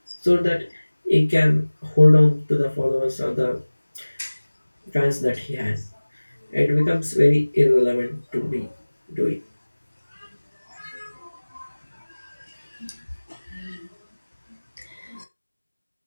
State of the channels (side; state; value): both; inverted; correlation -1.00